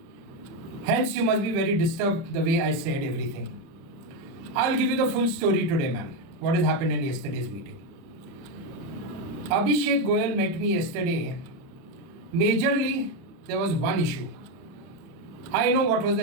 Hence, you must be very disturbed the way I said everything. I'll give you the full story today, ma'am. What has happened in yesterday's meeting. Abhishek Goyal met me yesterday. Majorly, there was one issue. I know what was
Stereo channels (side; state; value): left; late; 30 ms